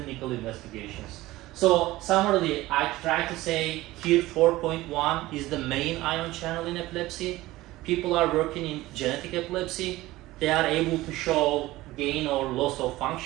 investigations. So summarily, I try to say KIR 4.1 is the main ion channel in epilepsy. People are working in genetic epilepsy. They are able to show gain or loss of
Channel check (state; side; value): quieter; left; 17.8 dB